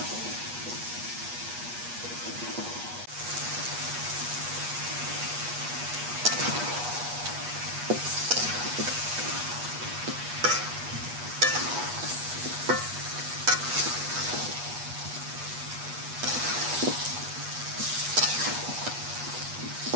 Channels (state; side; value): late; left; 8.3 ms